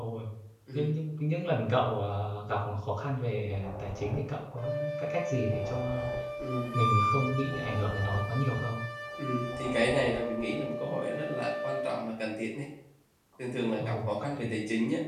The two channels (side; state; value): both; identical; correlation 1.00